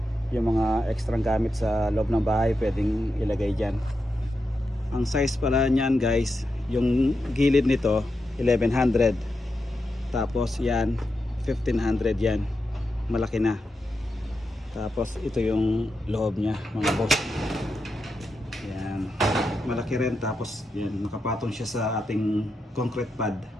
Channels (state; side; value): normal; both; correlation 0.87